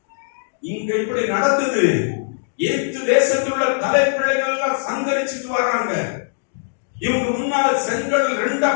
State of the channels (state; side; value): silent; right; digital silence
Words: இங்க இப்படி நடந்தது. ஏத்து தேசத்தில் உள்ள தலைப்பிள்ளைகள் எல்லாம் சங்கரிச்சுட்டு வர்றாங்க. இவங்க முன்னால செங்கல் 2ஆ